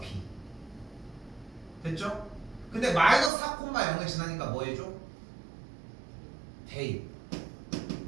b. 됐죠? 근데 마이너스 4 콤마 0을 지나니까 뭐 해줘? 대입.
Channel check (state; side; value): drops out; left; at 3.3 s